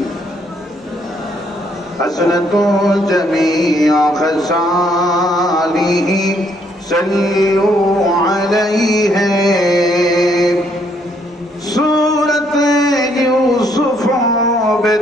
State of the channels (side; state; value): both; normal; correlation 0.69